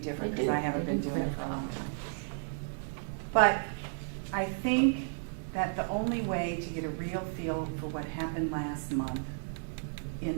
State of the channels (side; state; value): left; silent; digital silence